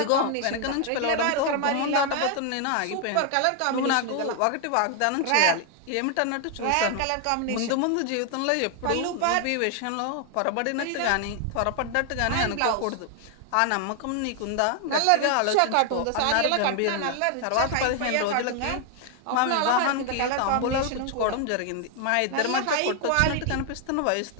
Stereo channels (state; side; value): different; both; correlation 0.00